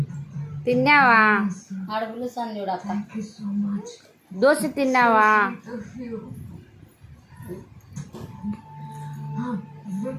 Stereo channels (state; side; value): identical; both; correlation 1.00